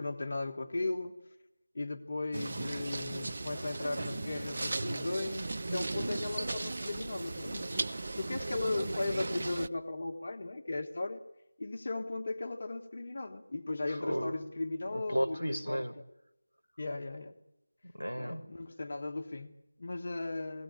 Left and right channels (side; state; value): both; inverted; correlation -0.96